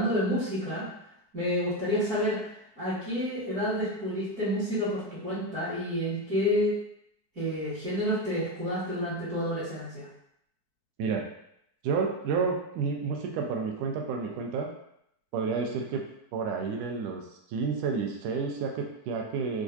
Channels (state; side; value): late; left; 4.6 ms